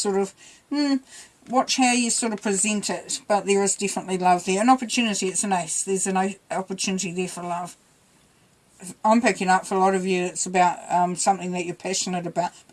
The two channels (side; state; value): both; identical; correlation 1.00